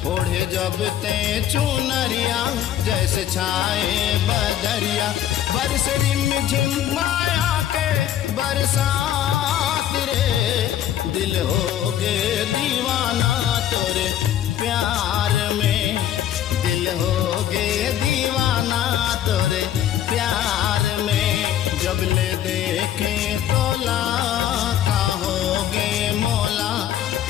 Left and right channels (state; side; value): quieter; right; 11.1 dB